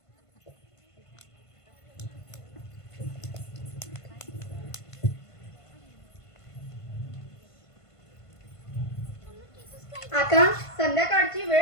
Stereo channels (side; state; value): right; late; 1.5 ms